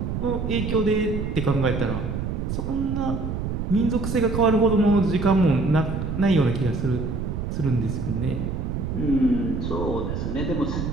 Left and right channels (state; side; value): noise; right; rumble, 3 dB below the sound